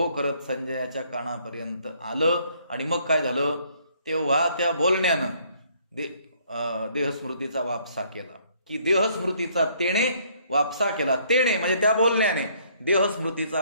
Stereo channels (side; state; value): both; inverted; correlation -0.64